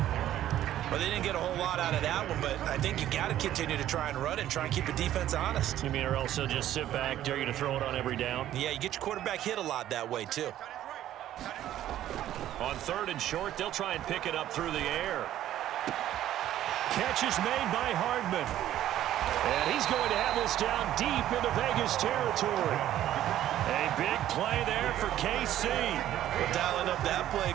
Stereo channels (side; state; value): left; quieter; 12.5 dB